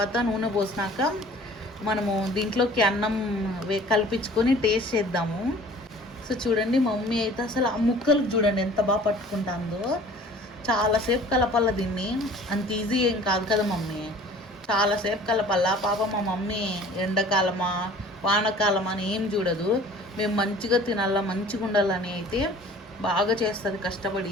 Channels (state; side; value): normal; both; correlation 0.49